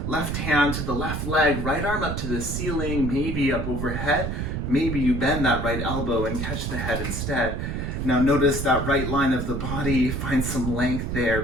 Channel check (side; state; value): right; noise; rumble, 3 dB below the sound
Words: left hand to the left leg, right arm up to the ceiling, maybe up overhead, maybe you bend that right elbow and catch the head instead. Now notice that right line of the body, find some length there,